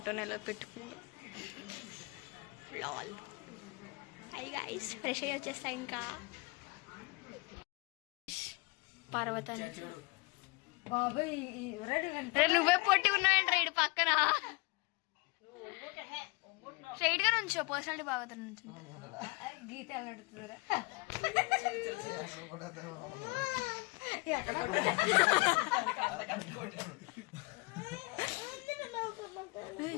ఎలా పెట్టుకుందో. లాల్. హై గైస్, ఫ్రెష్ అయ్యి వచ్చేస్తా ఇంకా. పర్వతాన్ని నువ్వే పొట్టి ఉన్నావేంట్రా ఇటు పక్కన. స్ట్రైట్ గా నుంచో, పర్సనాలిటీ బాగా నుంచి గీత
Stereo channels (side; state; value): right; quieter; 26.7 dB